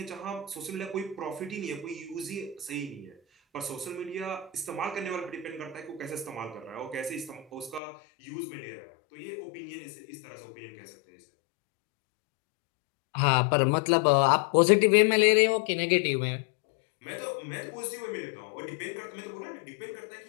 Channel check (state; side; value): drops out; right; at 7.8 s